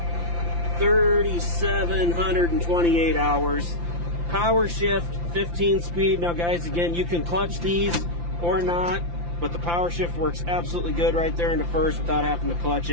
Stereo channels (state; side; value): late; left; 5.8 ms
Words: 3,728 hours. Power shift, 15 speed. Now guys, again, you can clutch these or not, but the power shift works absolutely good right there into first without having to clutch